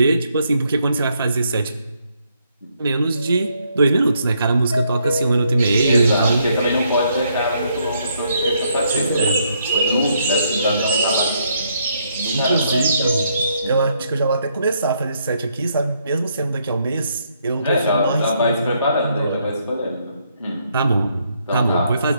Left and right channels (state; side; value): inverted; both; correlation -0.73